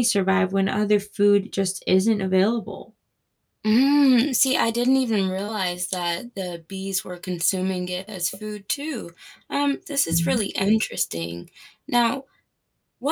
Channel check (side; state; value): both; identical; correlation 1.00